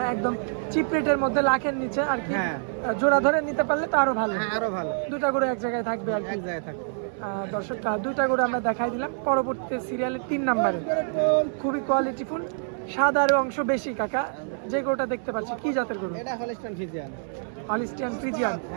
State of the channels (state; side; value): silent; left; 61 dB below the other